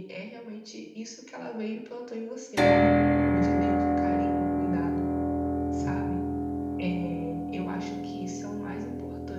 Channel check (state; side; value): identical; both; correlation 1.00